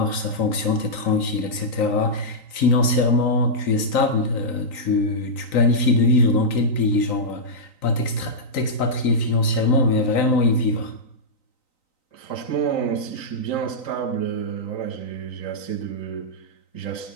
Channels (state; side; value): late; right; 3.9 ms